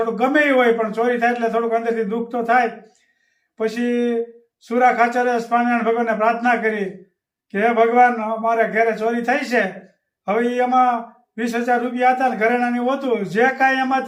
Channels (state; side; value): identical; both; correlation 1.00